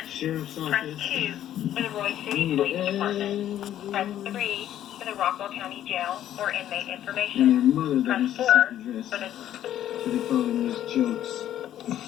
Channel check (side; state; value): right; quieter; 11.6 dB